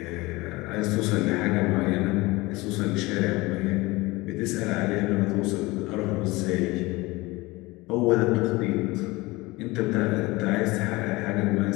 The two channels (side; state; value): right; quieter; 21.8 dB